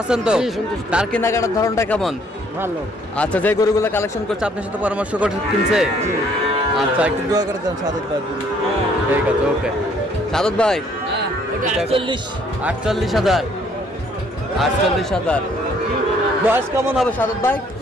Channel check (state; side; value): normal; both; correlation 0.63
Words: আছেন তো? জি, সন্তুষ্ট। তার কেনাকাটার ধরনটা কেমন? ভালো। আচ্ছা যে গরুগুলো কালেকশন করছে আপনার সাথে পরামর্শ করে কিনছে? আচ্ছা একটু দোয়া করে দেন সাদত ভাই। ঠিক আছে, ওকে। সাদত ভাই হ্যাঁ, ওটা 48। 48,000। 48,000। বয়স কেমন হবে সাদত ভাই?